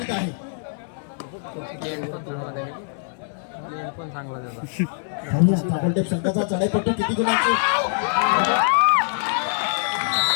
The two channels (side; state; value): right; silent; 63 dB below the other